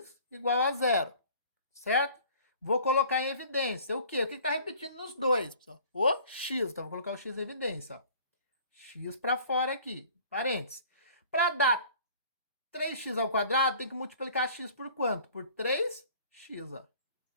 igual a 0. Certo? Vou colocar em evidência o quê? O que está repetindo nos dois, pessoal? O x. Então, vou colocar o x em evidência. Ó. X para fora aqui. Parênteses. Para dar 3x², tem que multiplicar x por quanto? Por 3x. Ó.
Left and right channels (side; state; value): both; inverted; correlation -0.50